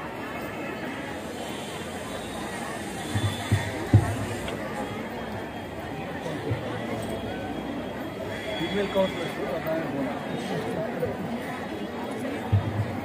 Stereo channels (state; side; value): identical; both; correlation 1.00